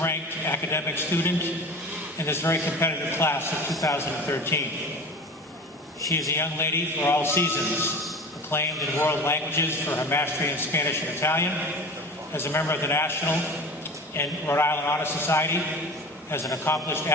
academic student in this very competitive class of 2013. She is a young lady for all seasons, acclaimed in world languages for her mastery in Spanish and Italian, as a member of the National and Rhode Island Honor Society, as an accomplished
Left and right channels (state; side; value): normal; both; correlation 0.35